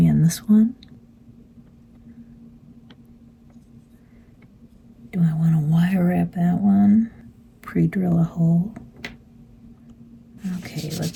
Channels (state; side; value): identical; both; correlation 1.00